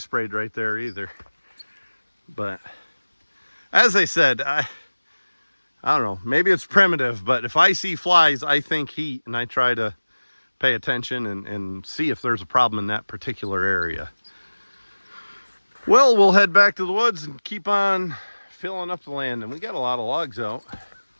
right there either. But as I said, I don't know, maybe it's primitive, but if I see flies, I think heat, and I try to pay attention and see if there's a problem in that particular area. Well, we'll head back to the woods and keep on filling up the land, and we got a lot of logs out.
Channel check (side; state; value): both; inverted; correlation -1.00